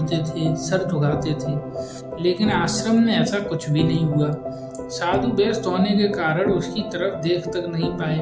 थे, सर झुकाते थे। लेकिन आश्रम में ऐसा कुछ भी नहीं हुआ। साधु व्यस्त होने के कारण उसकी तरफ देख तक नहीं पाए।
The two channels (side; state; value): both; identical; correlation 1.00